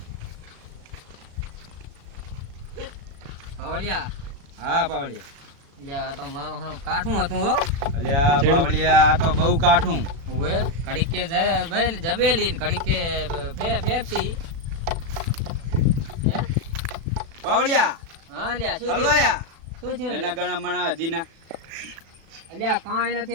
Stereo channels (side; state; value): left; late; 36 ms